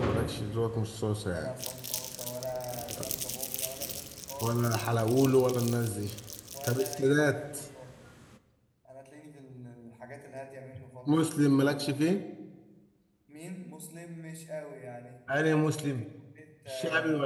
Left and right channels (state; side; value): identical; both; correlation 1.00